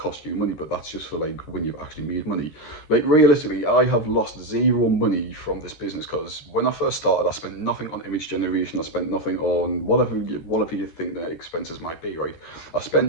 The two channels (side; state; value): right; late; 13 ms